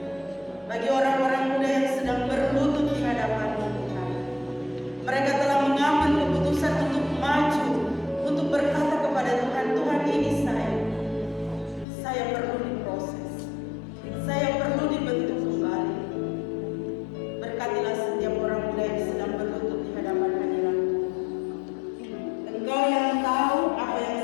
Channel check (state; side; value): drops out; right; at 11.9 s